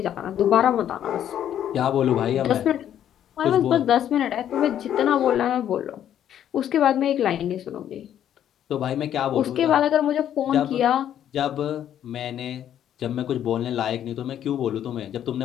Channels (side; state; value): right; quieter; 10.4 dB